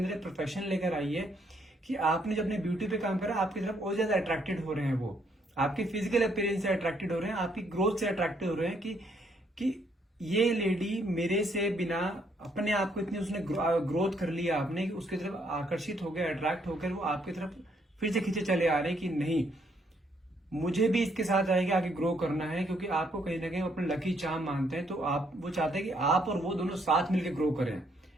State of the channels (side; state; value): both; normal; correlation 0.71